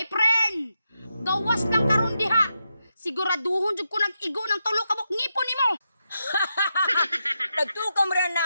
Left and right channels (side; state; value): both; inverted; correlation -0.85